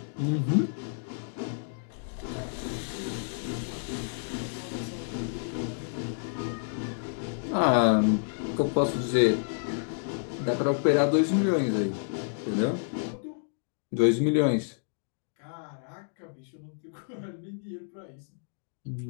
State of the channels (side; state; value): right; silent; digital silence